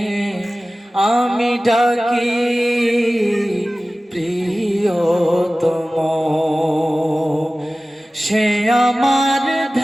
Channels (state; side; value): normal; both; correlation 0.97